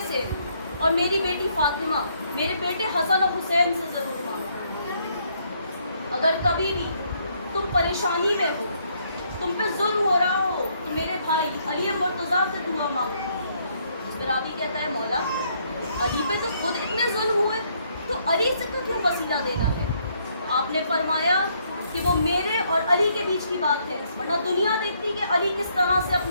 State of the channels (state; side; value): inverted; both; correlation -0.70